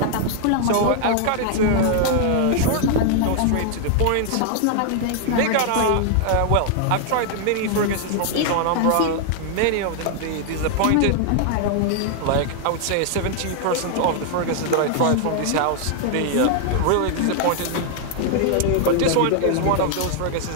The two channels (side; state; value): both; different; correlation 0.00